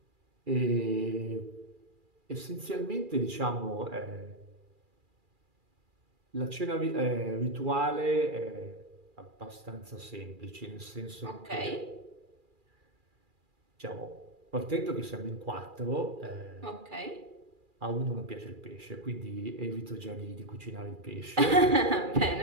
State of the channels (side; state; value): left; late; 2.4 ms